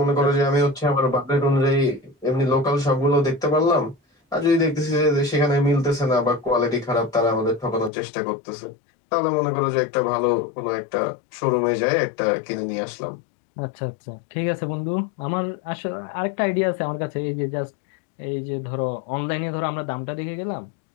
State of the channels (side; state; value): right; drops out; at 7.9 s